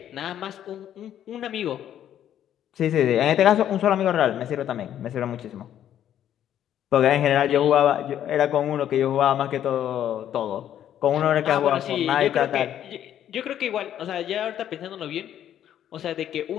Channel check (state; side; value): quieter; right; 10.7 dB